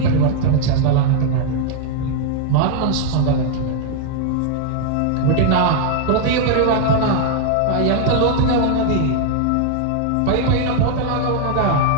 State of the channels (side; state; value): both; different; correlation 0.00